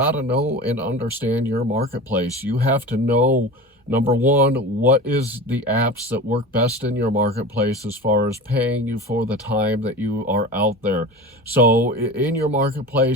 to know and understand your marketplace. You have to know, number one, what is the apps that work best in your marketplace as far as paying you for the time that you are out there. So in your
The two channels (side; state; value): both; normal; correlation 0.33